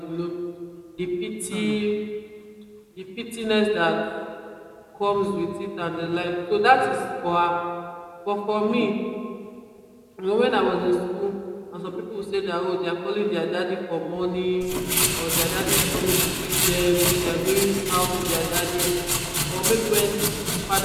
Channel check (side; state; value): both; identical; correlation 1.00